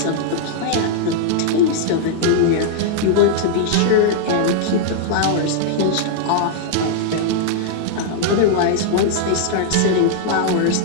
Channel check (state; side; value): different; both; correlation -0.01